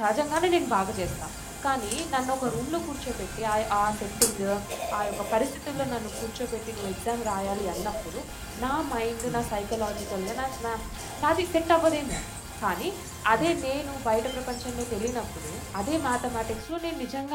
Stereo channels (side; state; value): both; identical; correlation 1.00